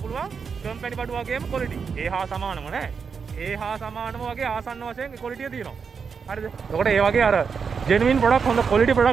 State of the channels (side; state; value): left; quieter; 6.0 dB